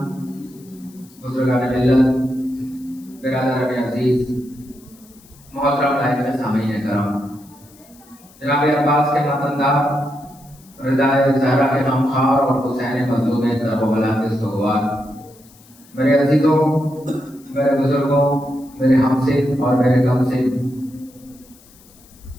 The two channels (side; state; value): left; noise; hiss, 26 dB below the sound